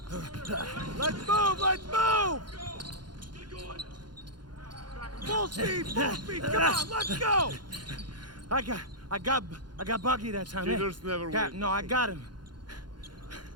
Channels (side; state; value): left; late; 0.71 ms